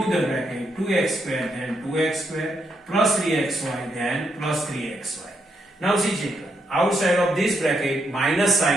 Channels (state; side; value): normal; both; correlation 0.79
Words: the bracket, 2x square then 2x square plus 3xy then plus 3xy. Now see children, outside of this bracket minus